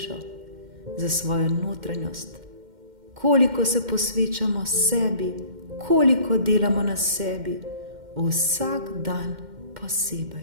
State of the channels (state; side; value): late; left; 2.1 ms